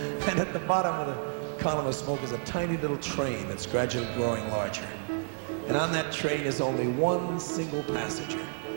And at the bottom of the column of smoke is a tiny little train that's gradually growing larger. And on that train is only one single passenger.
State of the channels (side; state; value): left; silent; 58 dB below the other